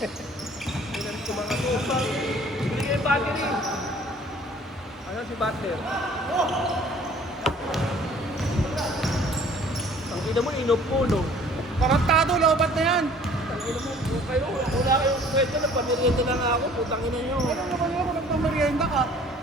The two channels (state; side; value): normal; both; correlation 0.53